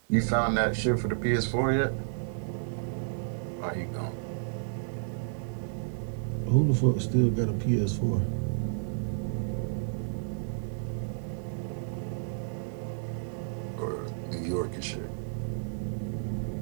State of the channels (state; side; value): silent; left; digital silence